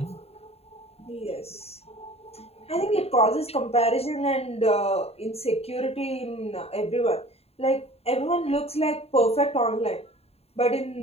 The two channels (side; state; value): right; late; 0.29 ms